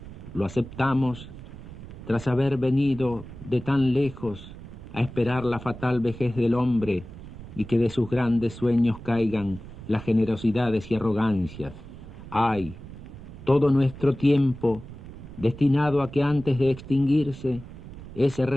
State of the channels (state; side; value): noise; right; rumble, 14 dB below the sound